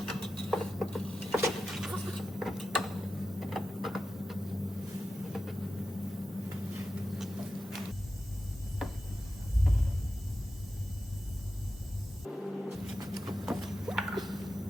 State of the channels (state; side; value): normal; both; correlation 0.92